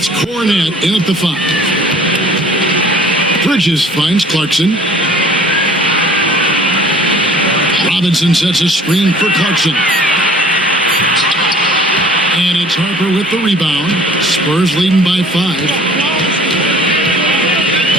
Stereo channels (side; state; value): both; normal; correlation 0.50